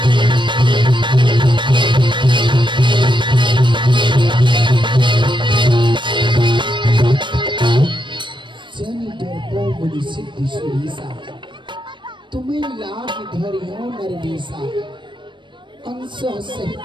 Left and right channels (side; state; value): left; late; 0.23 ms